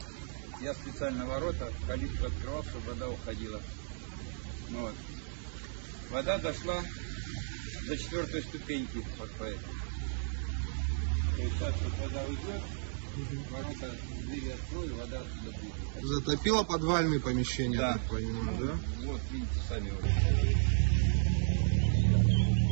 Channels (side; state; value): left; silent; digital silence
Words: я специально ворота, калитку открывал, чтобы вода уходила. Вот. Вода дошла до 4-й ступеньки, вот по этой. То есть сейчас вот вода уйдет, ворота, двери открою, вода отсюда будет. Затопило подвальные помещения, да. Так понимаю, да? Вот, видите, сами вот.